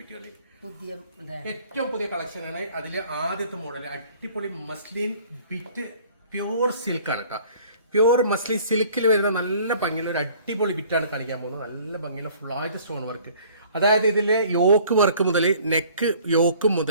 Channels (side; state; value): both; inverted; correlation -0.53